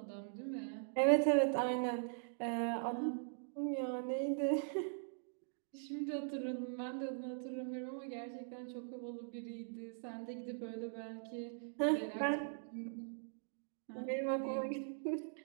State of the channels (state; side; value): silent; left; digital silence